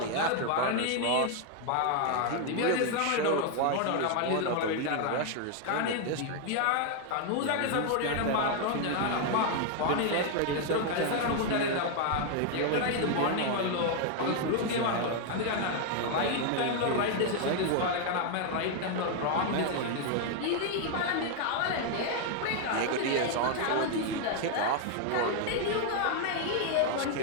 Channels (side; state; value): both; different; correlation 0.00